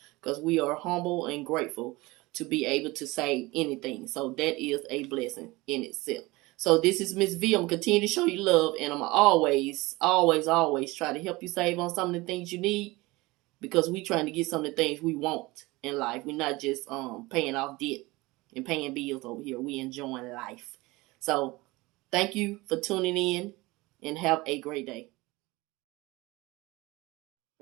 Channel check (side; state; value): left; quieter; 21.7 dB